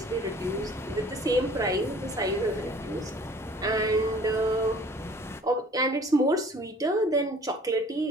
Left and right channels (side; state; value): both; normal; correlation 0.51